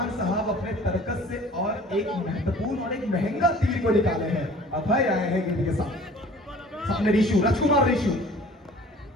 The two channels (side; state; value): both; normal; correlation 0.48